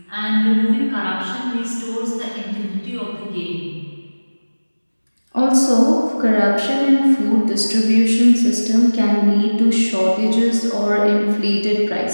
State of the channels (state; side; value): inverted; both; correlation -1.00